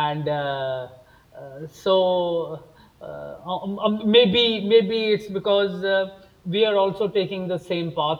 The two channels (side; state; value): both; identical; correlation 1.00